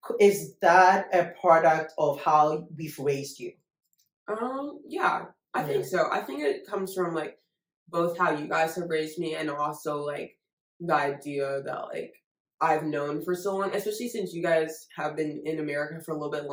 Is that a product of how we've raised you? Yeah, I Yeah. think so. I think it comes from like both how you guys have raised me and also like the idea that like I've known for so long, especially since you guys have been in America for a little bit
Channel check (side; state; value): both; identical; correlation 1.00